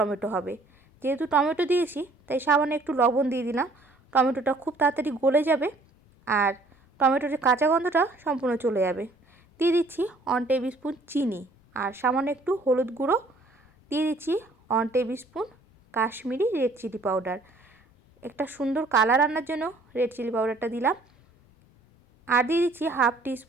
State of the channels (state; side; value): quieter; left; 3.1 dB